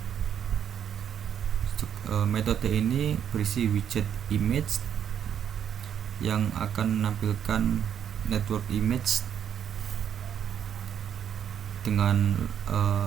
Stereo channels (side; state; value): left; quieter; 8.9 dB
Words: Metode ini berisi widget image yang akan menampilkan network image dengan